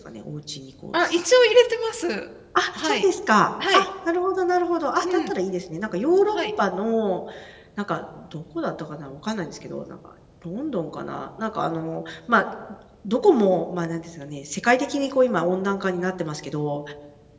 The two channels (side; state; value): both; identical; correlation 1.00